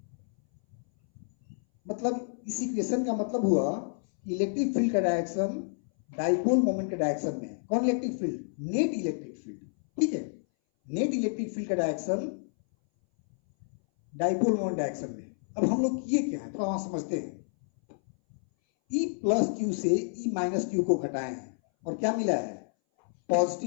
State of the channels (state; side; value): silent; right; 58 dB below the other